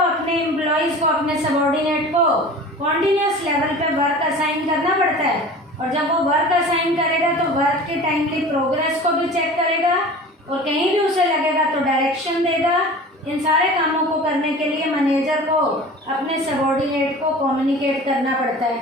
एम्प्लॉयज़ को, अपने सबॉर्डिनेट को कॉन्टिन्यूस लेवल पे वर्क असाइन करना पड़ता है, और जब वो वर्क असाइन करेगा तो वर्क के टाइमली प्रोग्रेस को भी चेक करेगा, और कहीं भी उसे लगेगा तो डायरेक्शन देगा। इन सारे कामों को करने के लिए मैनेजर को अपने सबॉर्डिनेट को कम्युनिकेट करना पड़ता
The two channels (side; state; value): both; normal; correlation 0.39